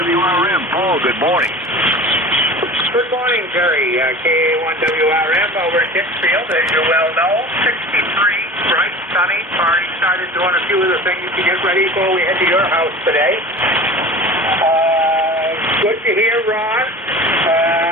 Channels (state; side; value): normal; both; correlation 0.37